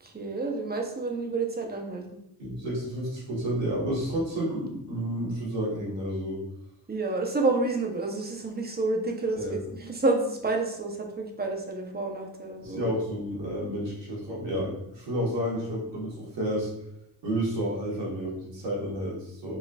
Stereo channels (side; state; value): both; normal; correlation 0.26